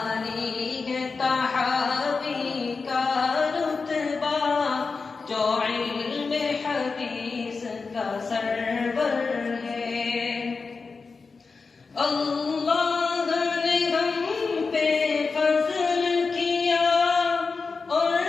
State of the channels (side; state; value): right; quieter; 4.5 dB